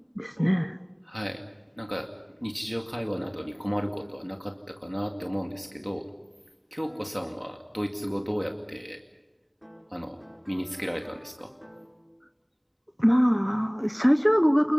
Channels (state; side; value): identical; both; correlation 1.00